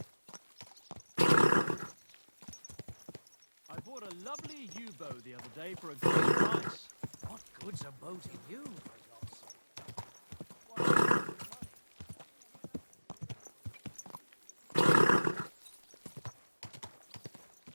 I bought a lovely U-bow the other day for a good price. What good's a bow to you, for God's sake?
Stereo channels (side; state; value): both; inverted; correlation -1.00